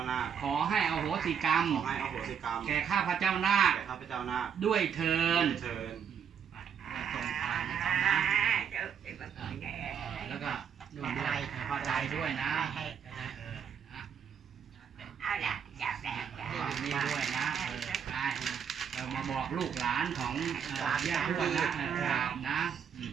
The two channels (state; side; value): quieter; left; 7.6 dB